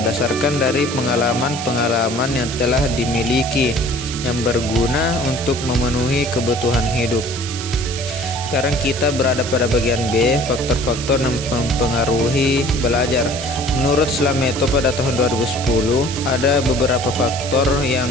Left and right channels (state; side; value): noise; right; hiss, 8 dB below the sound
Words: dari pengalaman-pengalaman yang telah dimiliki yang berguna untuk memenuhi kebutuhan hidup. Sekarang kita berada pada bagian B, faktor-faktor yang mempengaruhi belajar. Menurut Slameto pada tahun 2010, ada beberapa faktor yang